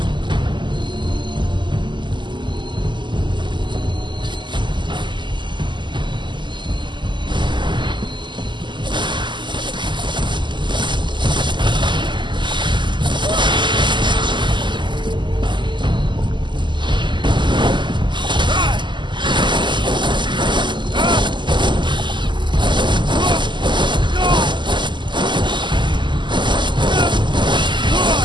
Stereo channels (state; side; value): late; left; 0.22 ms